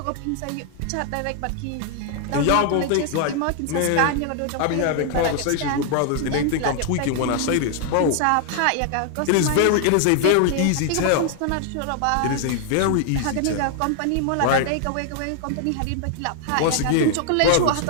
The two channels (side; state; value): both; different; correlation 0.00